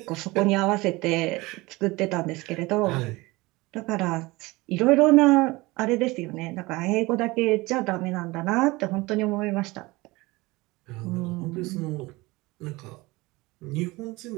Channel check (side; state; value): left; quieter; 21.9 dB